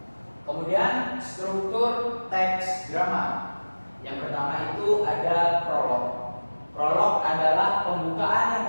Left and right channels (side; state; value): both; inverted; correlation -1.00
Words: Kemudian struktur teks drama. Yang pertama itu ada prolog. Prolog adalah pembukaan yang